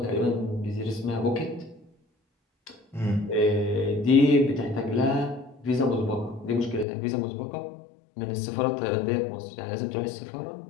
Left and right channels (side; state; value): right; drops out; at 6.9 s